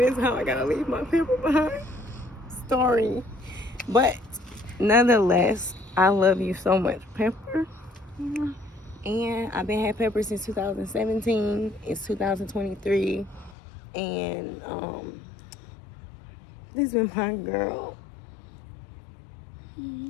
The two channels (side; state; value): right; drops out; at 13.6 s